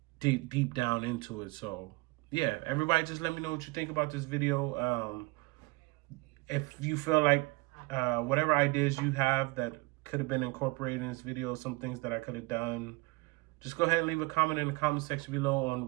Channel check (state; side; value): quieter; left; 25.0 dB